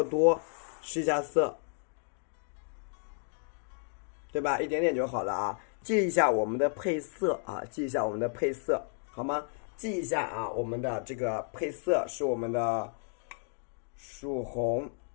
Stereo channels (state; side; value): silent; right; 56 dB below the other